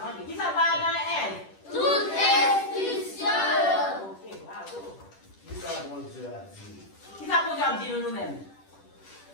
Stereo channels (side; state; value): right; late; 10 ms